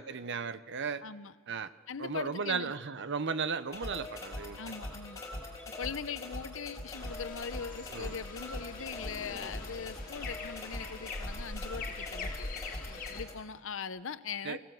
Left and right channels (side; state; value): both; normal; correlation 0.11